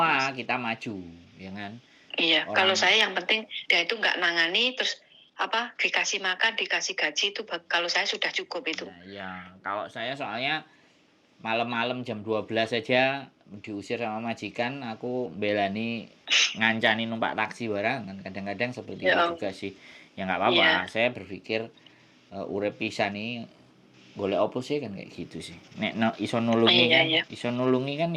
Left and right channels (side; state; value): both; identical; correlation 1.00